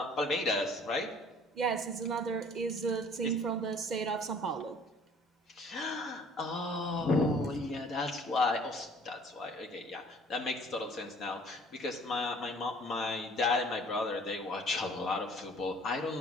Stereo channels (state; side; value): normal; both; correlation 0.53